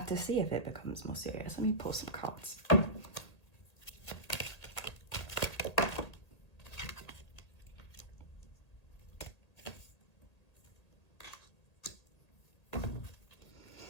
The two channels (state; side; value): late; right; 1.8 ms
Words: to see if it becomes more serious. Let me pull some cards.